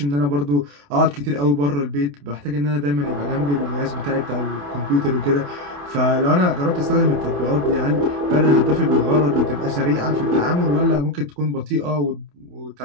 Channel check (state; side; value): late; left; 28 ms